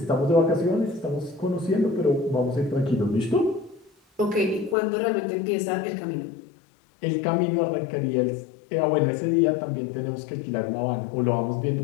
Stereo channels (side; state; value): right; drops out; at 4.8 s